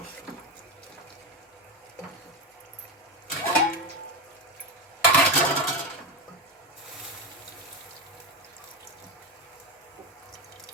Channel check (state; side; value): normal; both; correlation 0.14